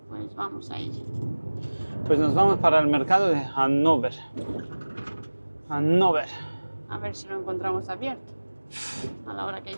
pues vamos a ir. Pues nos vamos para el mercado de Hannover. Hannover. A ver si lo encontramos abierto a la hora que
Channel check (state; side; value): inverted; both; correlation -1.00